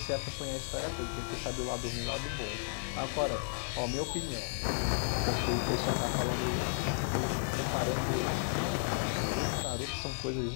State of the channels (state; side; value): silent; right; 55 dB below the other